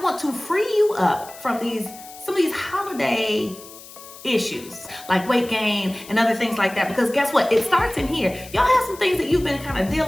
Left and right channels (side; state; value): left; noise; hiss, 18 dB below the sound